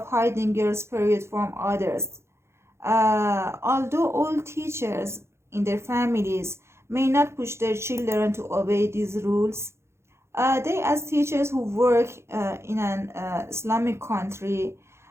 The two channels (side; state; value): left; late; 0.13 ms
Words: hiding girls' period from others. Although all teachers in their families may not push their children to obey these rules, they, as teachers who work in an Islamic country,